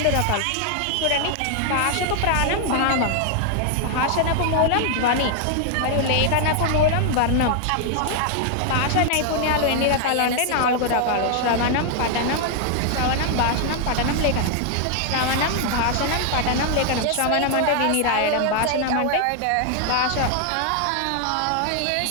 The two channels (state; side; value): different; both; correlation 0.00